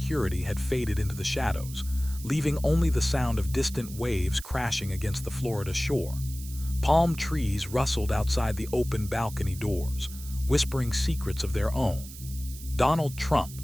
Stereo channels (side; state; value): right; noise; hiss, 15 dB below the sound